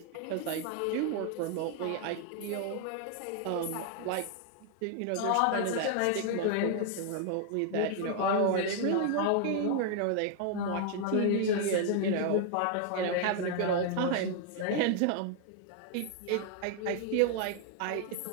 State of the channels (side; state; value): both; different; correlation 0.00